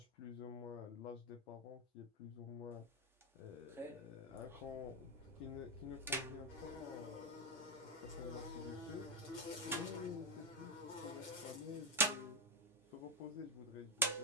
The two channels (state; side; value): normal; both; correlation 0.06